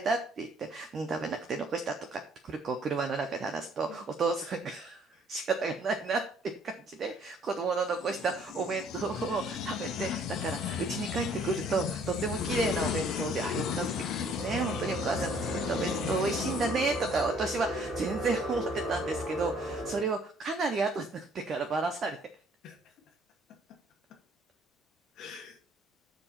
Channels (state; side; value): normal; both; correlation 0.60